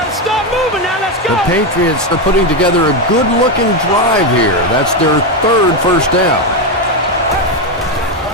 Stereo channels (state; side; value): normal; both; correlation 0.09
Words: to stop moving now. Let's go. The Patriots are putting together a good-looking drive here. That's their 3rd first down.